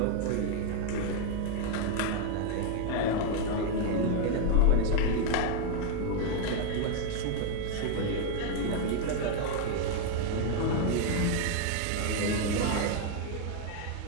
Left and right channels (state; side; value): different; both; correlation 0.00